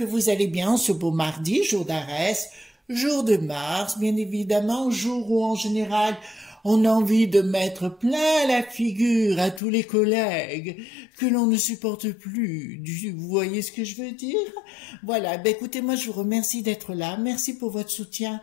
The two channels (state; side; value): drops out; right; at 9.6 s